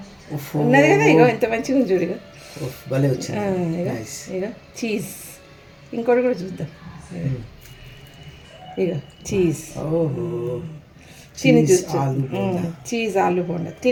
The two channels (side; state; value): both; identical; correlation 1.00